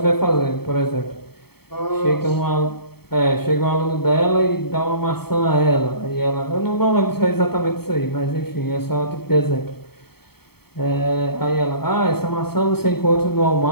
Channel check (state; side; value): late; right; 0.96 ms